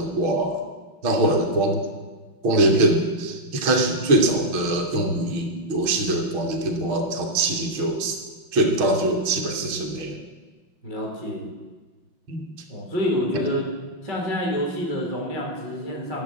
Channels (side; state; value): left; late; 6.3 ms